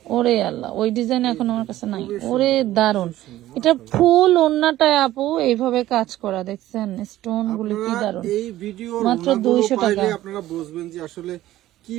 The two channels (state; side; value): quieter; left; 14.7 dB